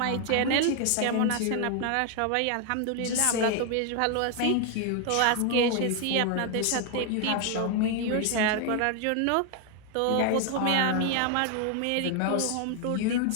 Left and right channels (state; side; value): different; both; correlation 0.00